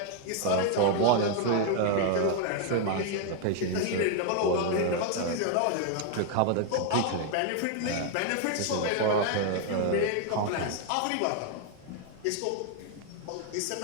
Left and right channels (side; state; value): both; different; correlation 0.00